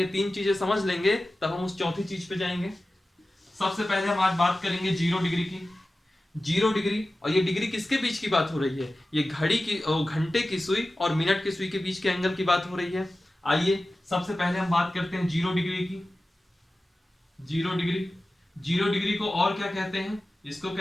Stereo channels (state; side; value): normal; both; correlation 0.95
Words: 3 चीजें समझ लेंगे तब हम उस चौथी चीज पे जाएंगे। सबसे पहले हम आज बात करेंगे 0 डिग्री की। 0 डिग्री, और ये डिग्री किसके बीच की बात हो रही है, ये घड़ी की घंटे की सुई और मिनट की सुई के बीच के एंगल की बात हो रही है। आइए सबसे पहले हम बात करते हैं 0 डिग्री की। 0 डिग्री, 0 डिग्री को और क्या कहते हैं, इसको